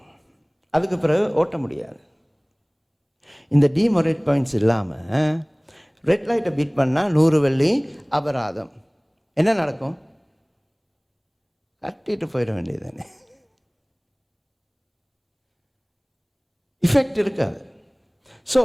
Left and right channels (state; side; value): identical; both; correlation 1.00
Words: அதுக்கு பிறகு ஓட்ட முடியாது. இந்த டிமோரேட் பாயிண்ட்ஸ் இல்லாமல் ரெட் லைட்டை பீட் பண்ணால் 100 வெள்ளி அபராதம். என்ன நடக்கும்? கட்டிட்டு போயிட வேண்டியது தானே, இஃபெக்ட் இருக்காது. ஸோ